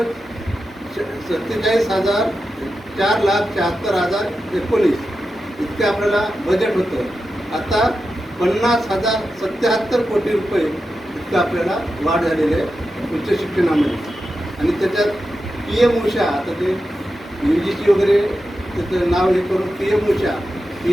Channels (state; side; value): normal; both; correlation 0.90